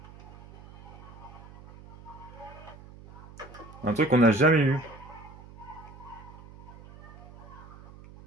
Un truc qu'on n'a jamais eu.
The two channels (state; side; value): noise; right; hum, 18 dB below the sound